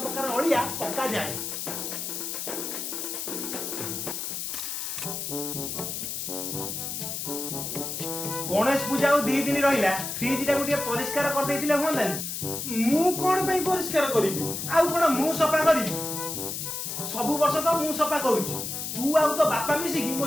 प्रकार अळिया पक्का जाय। गणेश पूजा और 2 दिन रहिला फ्रिज टा गोटे परिष्कार कर देथिले होंदानी मु कोन पई परिष्कार करिबि आउ कोन मु सफा करिबि सब वर्ष तो मु सफा करूची तू आउ तो बापा मिसी कि मो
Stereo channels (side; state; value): left; noise; hiss, 4 dB below the sound